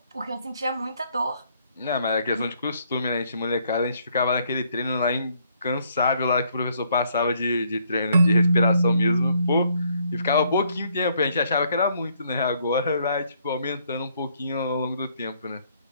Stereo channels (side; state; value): both; inverted; correlation -0.69